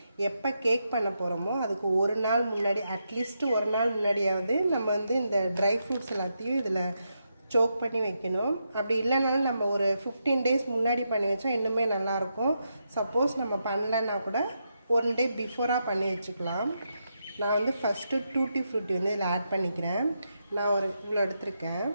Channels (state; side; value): inverted; both; correlation -0.83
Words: எப்போ கேக் பண்ண போகிறோமோ அதுக்கு ஒரு நாள் முன்னாடி, அட்லீஸ்ட் ஒரு நாள் முன்னாடியாவது நம்ம வந்து இந்த ட்ரை ஃப்ரூட்ஸ் எல்லாத்தையும் இதில் சோக் பண்ணி வைக்கணும். அப்படி இல்லைனாலும் நம்ம ஒரு 15 days முன்னாடி பண்ணி வச்சா இன்னுமே நல்லாயிருக்கும். சப்போஸ் நம்ம பண்ணலைன்னா கூட 1 day பிஃபோராக பண்ணி வச்சுக்கலாம். நான் வந்து ஃபஸ்ட்டு டூட்டி ஃப்ரூட்டி வந்து இதில் ஆட் பண்ணிக்கிறேன். நான் ஒரு இவ்வளோ எடுத்திருக்கேன்.